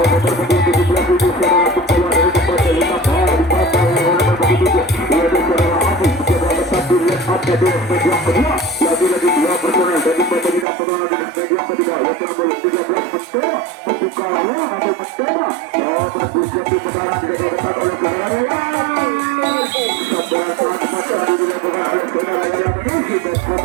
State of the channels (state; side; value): drops out; left; at 10.7 s